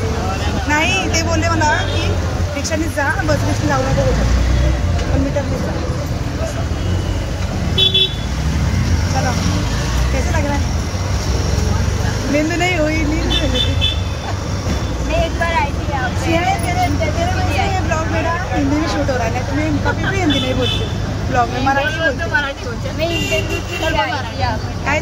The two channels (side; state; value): both; identical; correlation 1.00